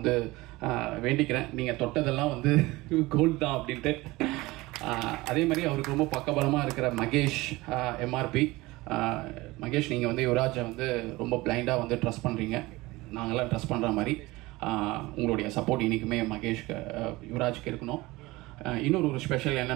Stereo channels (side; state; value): left; quieter; 20.6 dB